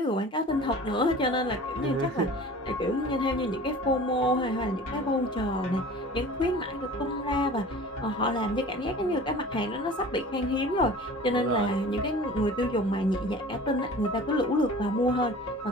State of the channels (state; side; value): normal; both; correlation 0.41